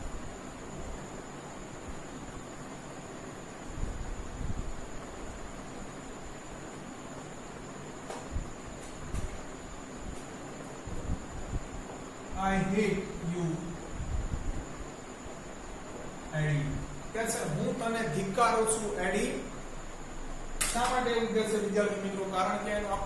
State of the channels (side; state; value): both; identical; correlation 1.00